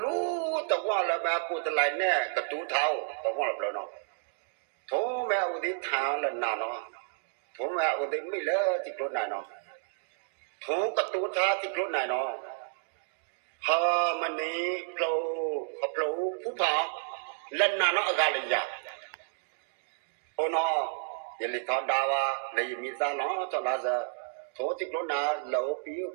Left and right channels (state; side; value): silent; left; digital silence